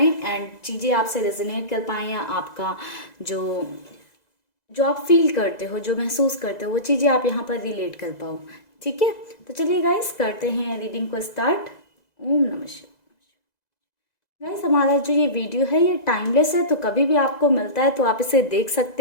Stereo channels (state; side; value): late; right; 2.0 ms